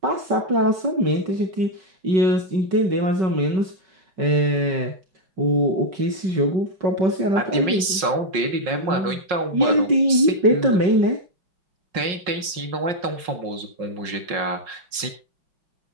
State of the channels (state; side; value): late; left; 5.5 ms